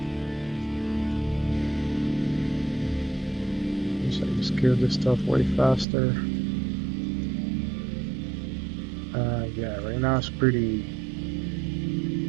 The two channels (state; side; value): drops out; left; at 5.9 s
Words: So I just kill this stuff way faster. Yeah, right now it's pretty